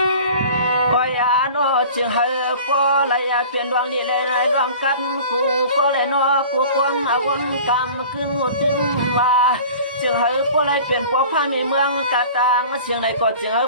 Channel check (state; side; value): inverted; both; correlation -0.43